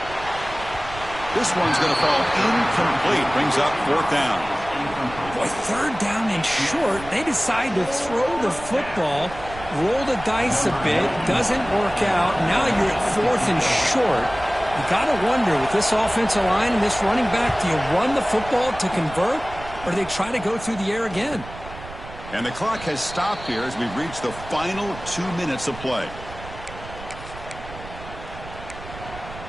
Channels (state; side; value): noise; right; rumble, 14 dB below the sound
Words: This one's going to fall incomplete. Brings up 4th down. Boy, 3rd down and short. They decide to throw the football, roll the dice a bit. Doesn't work out. Now you're at 4th and short. You got to wonder, with this offensive line and this running back, do you run the football to convert, or do they try to go through the air again? And the clock has stopped here as we've reached the final 2 minutes of play.